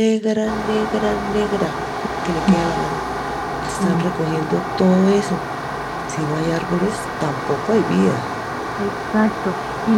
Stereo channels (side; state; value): both; identical; correlation 1.00